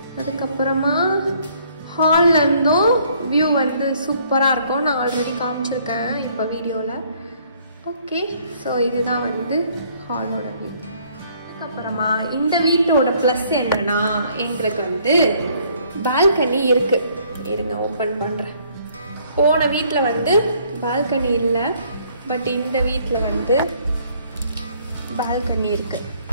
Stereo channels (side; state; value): both; inverted; correlation -0.63